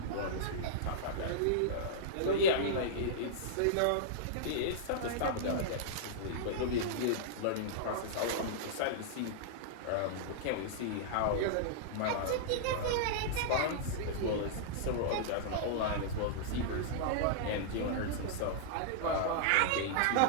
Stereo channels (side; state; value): both; different; correlation -0.02